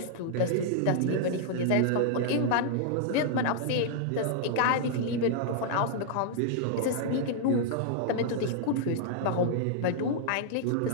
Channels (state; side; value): different; both; correlation -0.01